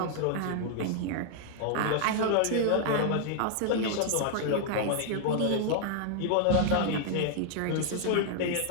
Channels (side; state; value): both; different; correlation -0.01